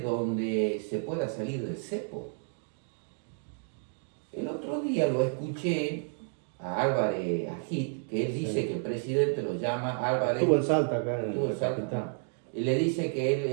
donde se pueda salir del cepo. El otro día lo escuché a Álvarez Agit, que él dice que el presidente lo llama Álvarez. Estuvo en Salta acá en el Salta. Y le dice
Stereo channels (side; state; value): left; silent; 57 dB below the other